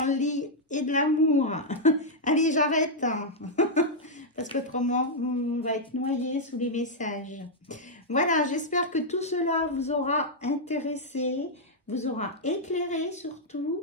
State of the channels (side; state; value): both; normal; correlation -0.04